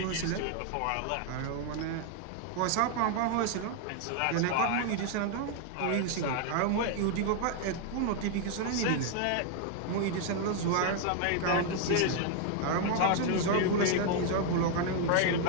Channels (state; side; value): different; both; correlation 0.00